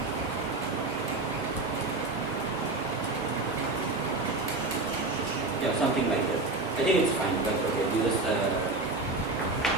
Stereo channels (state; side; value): quieter; left; 3.2 dB